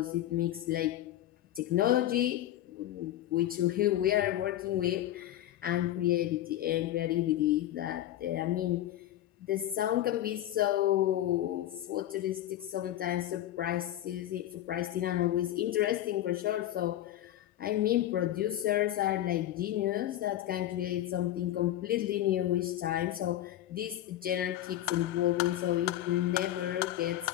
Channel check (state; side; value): quieter; right; 13.1 dB